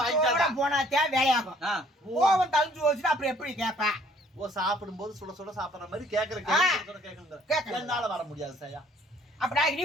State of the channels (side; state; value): both; normal; correlation 0.60